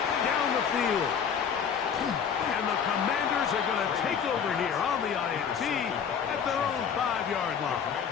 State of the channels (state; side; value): quieter; right; 7.3 dB